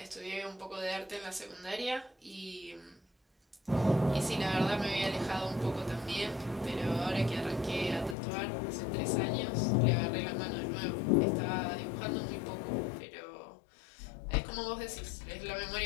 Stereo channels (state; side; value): drops out; right; at 8.2 s